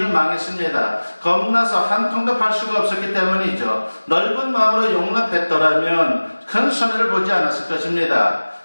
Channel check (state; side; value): inverted; both; correlation -1.00